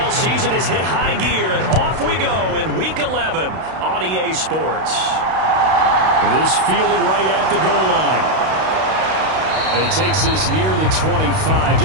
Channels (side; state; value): left; late; 32 ms